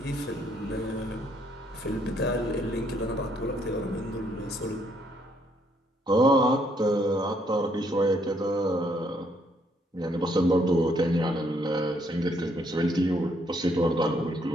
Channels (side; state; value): both; normal; correlation 0.70